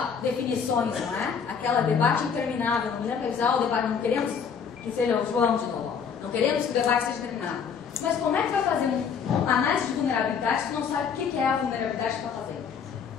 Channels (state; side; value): quieter; right; 6.7 dB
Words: Definições, não é? Aquela debate interminável, não me lembro realizar o debate, não queremos que seja o João de novo, não queremos que o debate seja terminado. Mas como é que vai fazer uma análise de vulnerabilidade se tu não sabe o que é a vulnerabilidade que tu está fazendo?